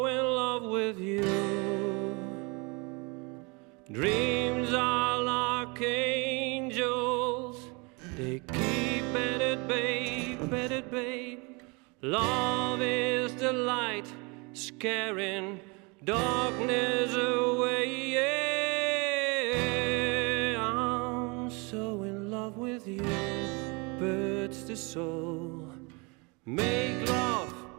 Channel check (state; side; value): quieter; left; 29.5 dB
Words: in love with you. Dreams are like angels. They keep at it, babe, at it, babe. Love is the light, scaring darkness away. Yeah, I'm so in love with you. Birds the soul, make love